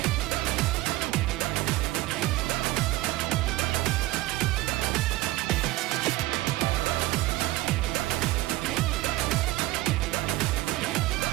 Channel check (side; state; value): left; quieter; 17.9 dB